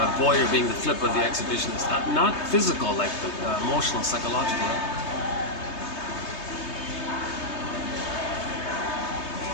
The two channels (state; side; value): late; right; 3.2 ms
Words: voyeur being the flip of the exhibitionist. Not physical, like the emotional, psychological. Right?